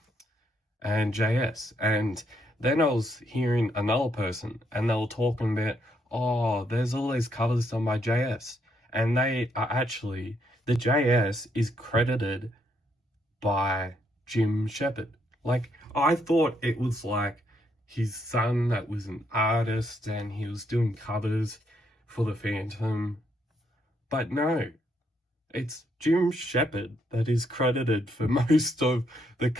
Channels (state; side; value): normal; both; correlation 0.75